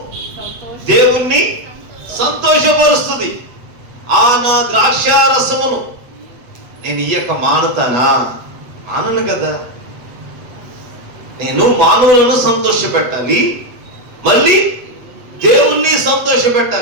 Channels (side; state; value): left; late; 8.1 ms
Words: దేవుణ్ణి సంతోషపరుస్తుంది. ఆ నా ద్రాక్ష రసమును నేను ఇయ్యక మానుతానా, మానను కదా. నేను మానవులను సంతోష పెట్టాలి, మళ్ళీ దేవుణ్ణి సంతోష